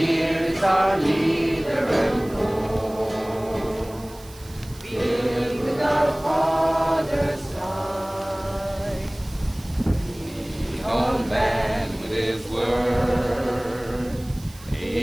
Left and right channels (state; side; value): noise; right; hiss, 21 dB below the sound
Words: Our leader and Lord, filled with our Father's light, He on man with His word,